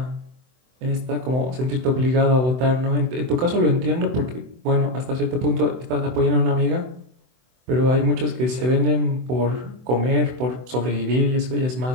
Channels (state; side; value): late; left; 24 ms